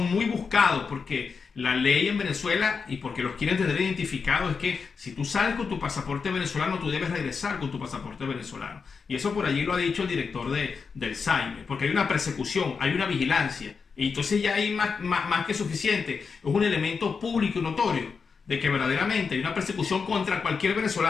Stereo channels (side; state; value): right; quieter; 5.4 dB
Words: muy buscados porque la ley en Venezuela, y porque los quieren tener identificados, es que si tú sales con tu pasaporte venezolano, tú debes regresar con tu pasaporte venezolano. Y eso por allí lo ha dicho el director del SAIME, porque hay una persecución, hay una vigilancia. Y entonces ya hay más que suficiente. Es un elemento público y notorio de que verdaderamente hay una persecución contra cualquier